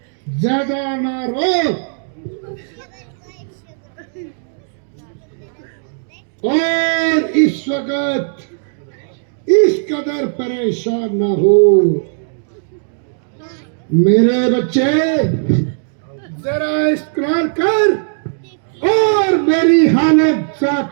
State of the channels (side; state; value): left; silent; digital silence